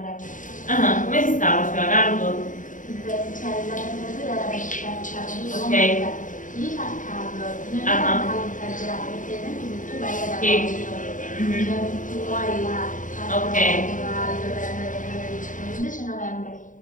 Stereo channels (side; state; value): right; late; 0.38 ms